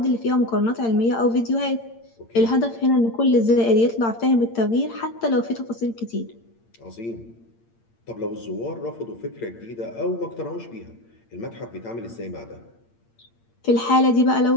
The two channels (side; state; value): right; late; 8.7 ms